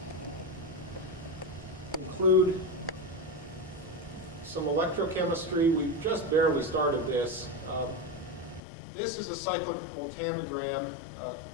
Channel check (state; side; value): drops out; right; at 8.6 s